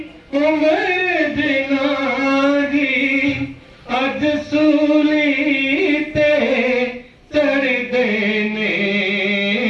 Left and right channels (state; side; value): identical; both; correlation 1.00